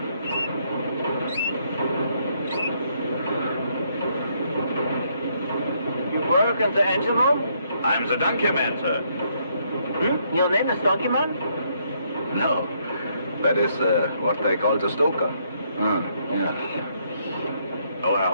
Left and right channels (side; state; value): both; inverted; correlation -0.72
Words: You work in the engine room? I'm the donkey man, sir. Hmm? Your name is Donkey Man? No. That is what they call the stoker. Yeah. Oh, I